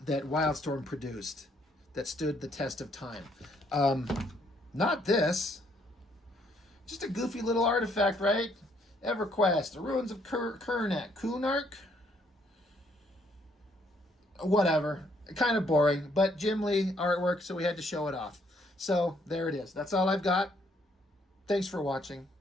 Wildstorm produced that stood the test of time. Not this. Just a goofy little artifact, right? Everquest, the Ruins of Kunark? Whatever. Kind of boring, but Jim Lee artwork, so we had to show it off. So, there it is. That's all I've got. Thanks for watching.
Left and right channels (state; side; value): normal; both; correlation 0.69